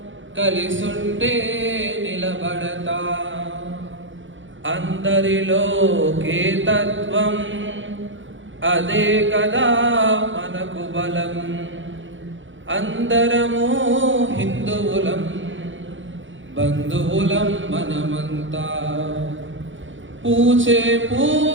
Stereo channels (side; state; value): left; late; 0.56 ms